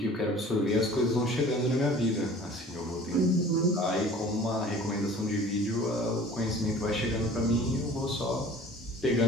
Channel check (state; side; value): normal; both; correlation 0.46